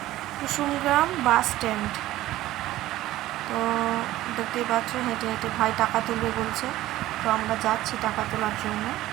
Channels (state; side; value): quieter; left; 15.5 dB